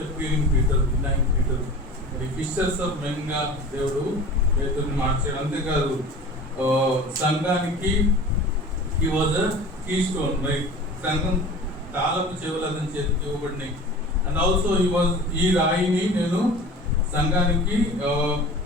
Peter, denying Peter. మరి ఫిషర్స్ ఆఫ్ మెన్ గా దేవుడు పేతురుని మార్చాడు. అంతేకాదు సంఘానికి he was a key stone. మరి సంఘం తాళపు చెవులు అతని చేతికి ఇవ్వబడినాయి. అండ్ ఆల్సో ఈ రాయిని నేను సంఘానికి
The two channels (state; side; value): normal; both; correlation 0.39